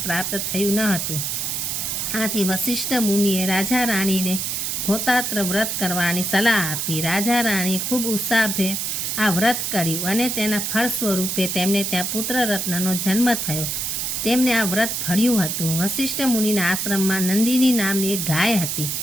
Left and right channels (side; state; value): right; noise; hiss, 1 dB below the sound